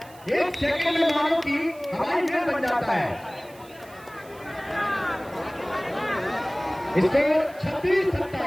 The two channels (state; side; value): noise; right; hiss, 24 dB below the sound